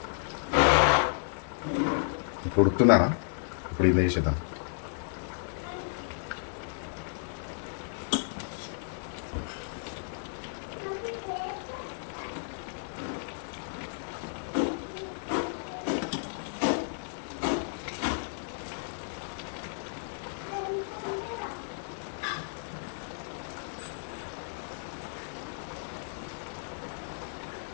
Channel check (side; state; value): right; silent; digital silence